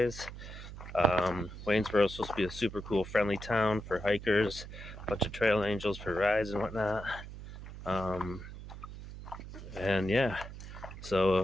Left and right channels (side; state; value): right; noise; hum, 12 dB below the sound